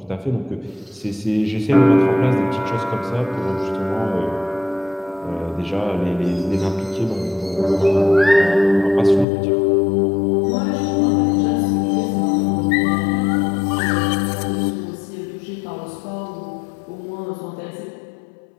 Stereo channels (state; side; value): drops out; right; at 9.2 s